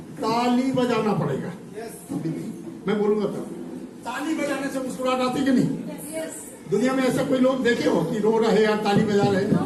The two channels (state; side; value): identical; both; correlation 1.00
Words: ताली बजाना पड़ेगा। मैं बोलूंगा तब ताली बजाने से मुस्कुराहट आती कि नहीं? दुनिया में ऐसा कोई लोग देखे हो कि रो रहे या ताली बजा रहे?